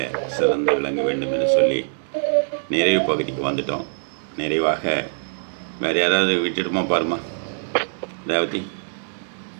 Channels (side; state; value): left; silent; digital silence